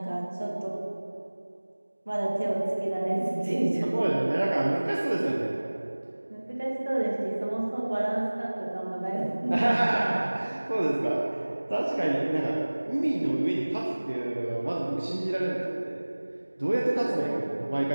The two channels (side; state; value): both; inverted; correlation -1.00